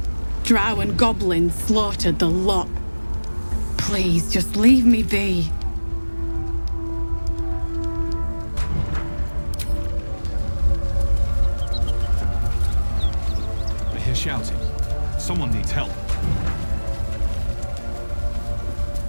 Drow and goblins slaughtered the lot. Please, just leave me be. I hear shouting. Someone needs help.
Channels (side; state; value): both; inverted; correlation -1.00